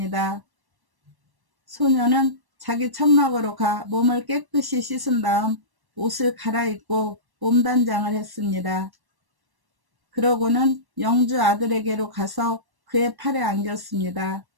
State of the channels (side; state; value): left; late; 1.1 ms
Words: 소녀는 자기 천막으로 가 몸을 깨끗이 씻은 다음 옷을 갈아입고 몸단장을 했습니다. 그러고는 영주 아들에게로 가서 그의 팔에 안겼습니다.